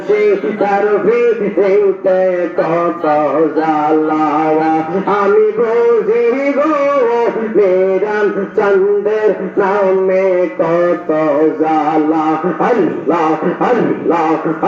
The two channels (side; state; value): both; identical; correlation 1.00